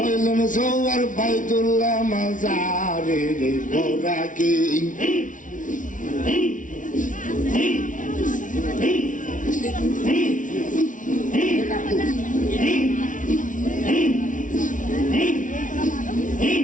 সৌয়ার বাইতুল্লাহ মাজারে পরাকি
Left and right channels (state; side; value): late; right; 0.38 ms